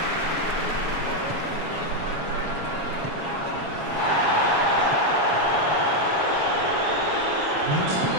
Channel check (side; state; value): left; late; 7.2 ms